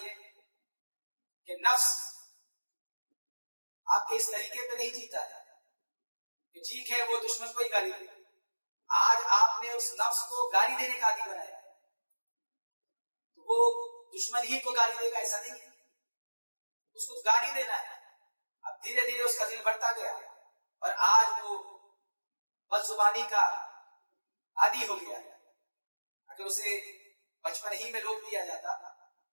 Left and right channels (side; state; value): both; inverted; correlation -1.00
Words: کہ نفس آپ کے اس طریقے پہ نہیں جیتا ہے کہ ٹھیک ہے وہ دشمن کو ہی گالی دے، آج آپ نے اس نفس کو گالی دینے کا عادی بنایا، تو وہ دشمن ہی کو گالی دے گا ایسا نہیں ہے، اس کو گالی دینا ہے۔ اب دھیرے دھیرے اس کا دل بڑھتا گیا اور آج وہ بد زبانی کا عادی ہو گیا ہے۔ اگر اسے بچپن ہی میں روک دیا جاتا